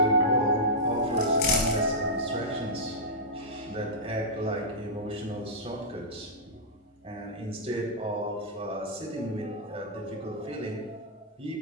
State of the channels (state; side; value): normal; both; correlation -0.12